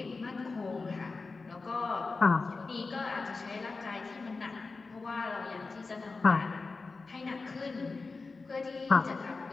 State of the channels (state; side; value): quieter; right; 4.0 dB